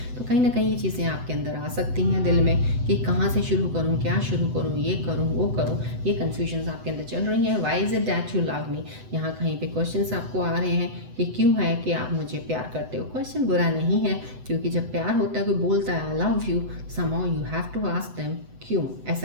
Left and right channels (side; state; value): left; late; 8.0 ms